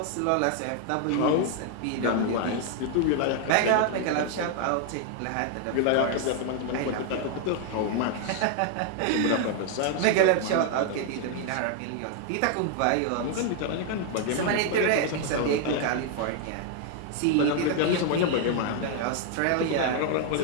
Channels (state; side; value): different; both; correlation 0.00